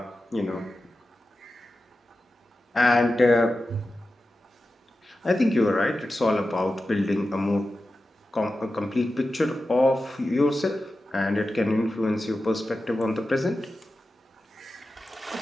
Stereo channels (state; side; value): normal; both; correlation 0.93